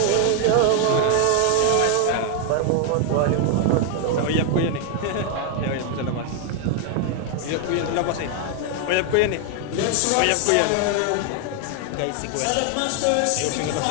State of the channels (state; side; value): different; both; correlation 0.00